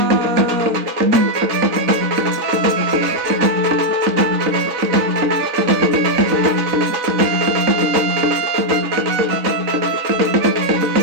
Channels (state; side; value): late; left; 3.9 ms